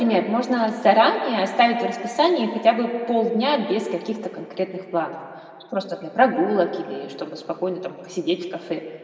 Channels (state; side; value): identical; both; correlation 1.00